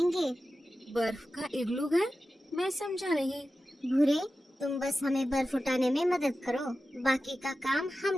बर्फ का इग्लू घर? मैं समझा नहीं। भूरे, तुम बस हमें बर्फ उठाने में मदद करो, बाकी का काम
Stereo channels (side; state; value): both; normal; correlation 0.93